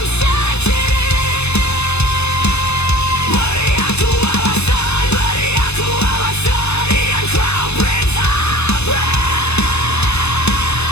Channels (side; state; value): right; late; 0.80 ms